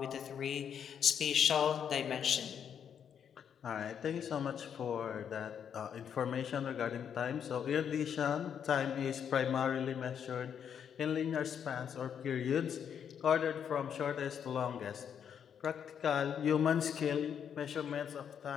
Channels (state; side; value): quieter; right; 8.1 dB